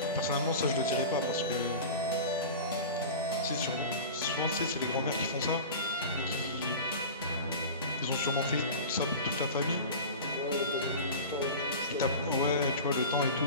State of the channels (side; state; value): both; inverted; correlation -0.32